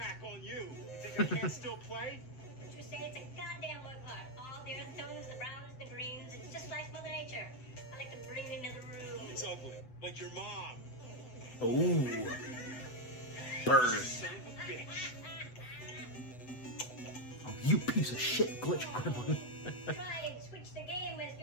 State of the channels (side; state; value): right; late; 8.0 ms